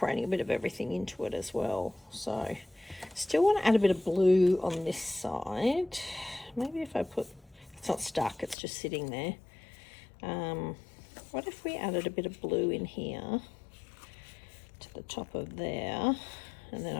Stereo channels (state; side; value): drops out; right; at 8.6 s